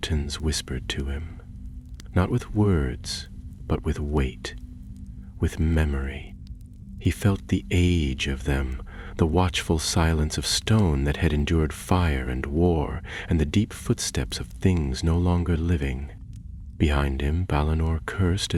whispered to him, not with words, but with weight, with memory. He felt the age of them, the watchful silence of stone that had endured fire and war, and the deep footsteps of things no longer living. Behind him, Balinor cursed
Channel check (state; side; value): identical; both; correlation 1.00